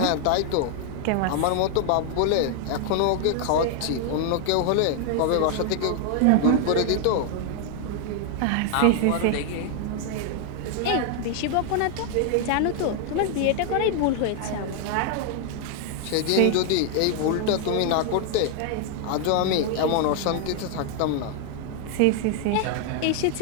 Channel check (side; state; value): both; different; correlation 0.00